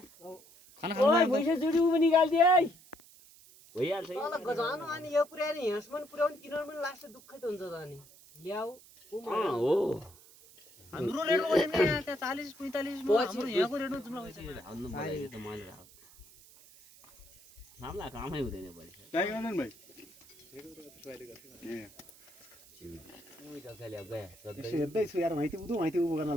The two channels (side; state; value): right; noise; hiss, 23 dB below the sound